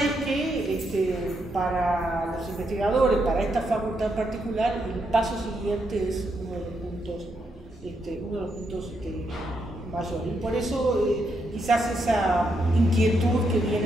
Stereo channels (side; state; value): both; normal; correlation 0.80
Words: es que para los investigadores, para esta facultad en particular, el paso siguiente es uno de los puntos mayores. Y por eso quizás esa inquietud que